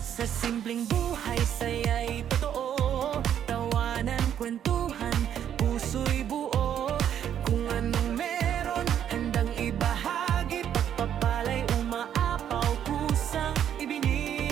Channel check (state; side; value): quieter; left; 9.7 dB